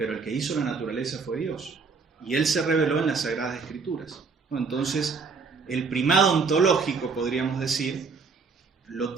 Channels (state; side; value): quieter; left; 4.9 dB